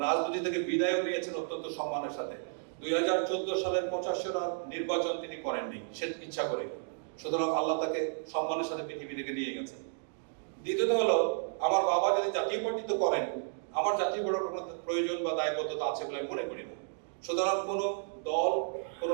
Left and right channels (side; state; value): left; silent; digital silence